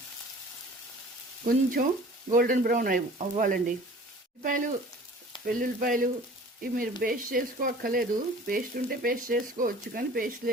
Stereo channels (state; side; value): normal; both; correlation 0.46